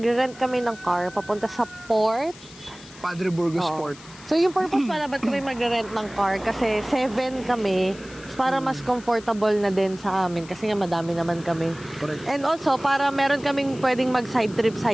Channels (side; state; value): left; noise; hiss, 20 dB below the sound